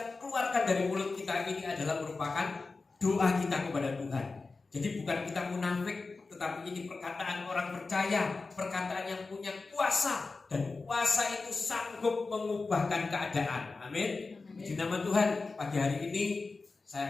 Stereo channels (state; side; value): quieter; right; 3.9 dB